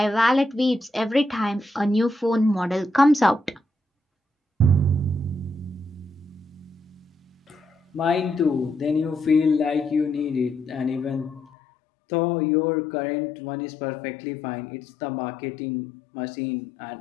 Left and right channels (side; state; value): right; drops out; at 11.5 s